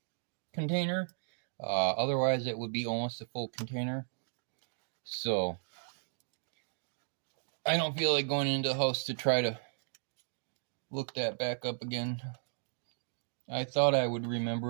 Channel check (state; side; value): silent; left; digital silence